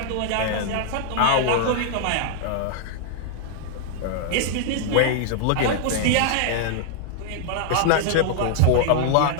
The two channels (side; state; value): both; different; correlation -0.01